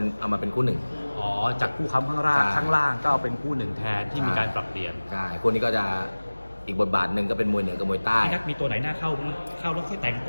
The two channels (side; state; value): both; inverted; correlation -1.00